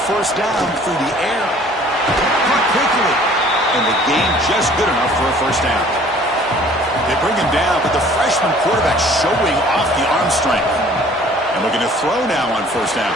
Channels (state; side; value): normal; both; correlation 0.53